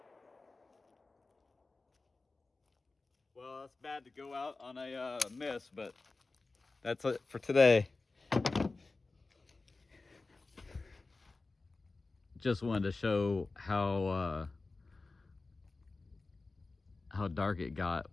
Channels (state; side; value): quieter; right; 3.6 dB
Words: Well, it's bad to go out on a miss, but that's it for today. Just wanted to show how dark it got